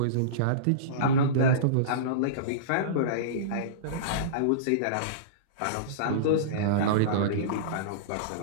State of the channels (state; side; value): different; both; correlation -0.05